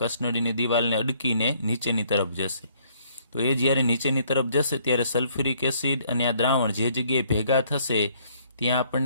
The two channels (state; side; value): inverted; both; correlation -0.64